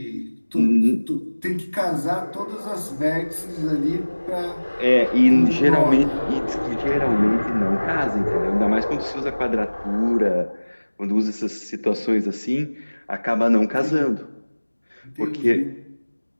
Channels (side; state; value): both; inverted; correlation -1.00